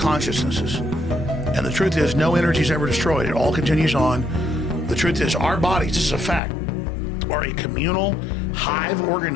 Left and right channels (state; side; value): drops out; right; at 6.4 s